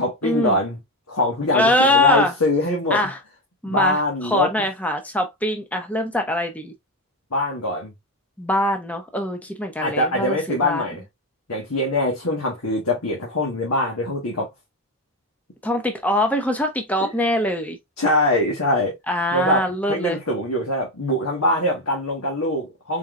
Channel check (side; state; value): both; normal; correlation 0.14